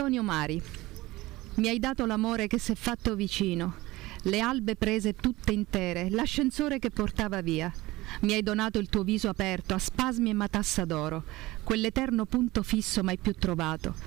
Mari. Mi hai dato l'amore che s'è fatto vicino, le albe prese tutte intere, l'ascensore che portava via. Mi hai donato il tuo viso aperto a spasmi e matassa d'oro, quell'eterno punto fisso mai più trovato,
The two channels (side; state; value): left; quieter; 19.3 dB